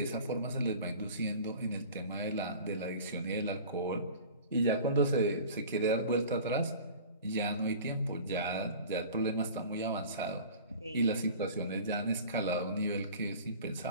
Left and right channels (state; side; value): inverted; both; correlation -0.41